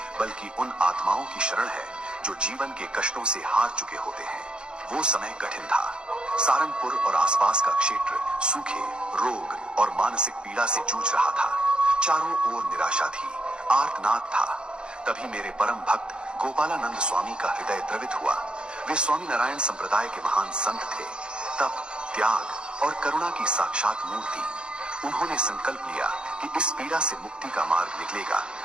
बल्कि उन आत्माओं की शरण है जो जीवन के कष्टों से हार चुके होते हैं। वो समय कठिन था। सारंगपुर और आसपास का क्षेत्र सूखे, रोग और मानसिक पीड़ा से जूझ रहा था। चारों ओर निराशा थी, आर्तनाद था। तभी मेरे परम भक्त गोपालानंद स्वामी का हृदय द्रवित हुआ। वे स्वामी नारायण संप्रदाय के महान संत थे, तप, त्याग और करुणा की साक्षात मूर्ति। उन्होंने संकल्प लिया कि इस पीड़ा से मुक्ति का मार्ग निकलेगा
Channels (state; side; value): late; left; 0.052 ms